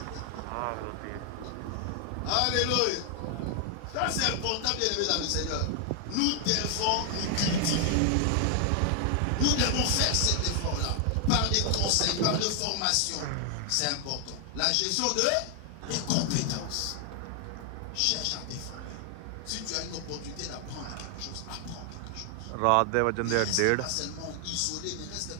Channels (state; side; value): different; both; correlation 0.00